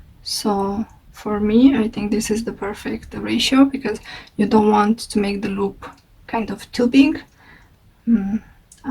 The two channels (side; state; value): both; identical; correlation 1.00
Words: So for me, I think this is the perfect ratio, because you don't want to make the loop kind of too big.